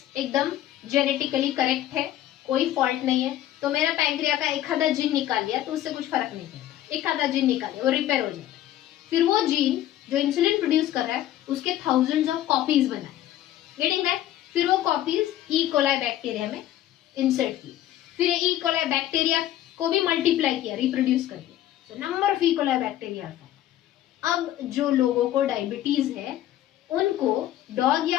एकदम जेनेटिकली करेक्ट है, कोई फॉल्ट नहीं है, तो मेरा पैंक्रिया का एक आधा जीन निकाल लिया तो उससे कुछ फर्क नहीं पड़ता. एक आधा जीन निकाल लिया, वो रिपेयर हो जाता है. फिर वो जीन जो इंसुलिन प्रोड्यूस कर रहा है उसके थाउजेंड्स ऑफ कॉपीज बनाए, गेटिंग दैट. फिर वो कॉपीज ई कोलाई बैक्टीरिया में इंसर्ट की. फिर ई कोलाई बैक्टीरिया को भी मल्टीप्लाई किया, रिप्रोड्यूस करके. So number of E coli bacteria. अब जो लोगों को डायबिटीज है उनको डॉग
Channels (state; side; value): quieter; right; 13.0 dB